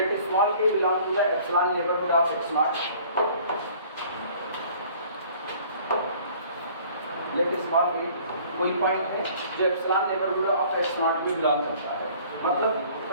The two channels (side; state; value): both; inverted; correlation -0.53